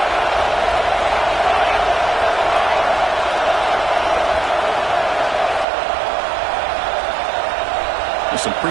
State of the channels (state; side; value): drops out; left; at 5.7 s